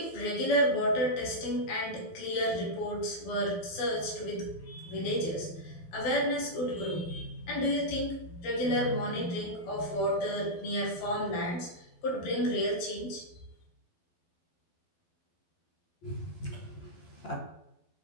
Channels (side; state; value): right; late; 12 ms